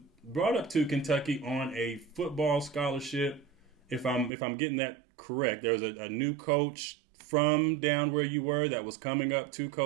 brought up to Kentucky on a football scholarship. If I'm getting that correct, there was a new coach from down where you were that was coming up to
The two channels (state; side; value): drops out; left; at 4.3 s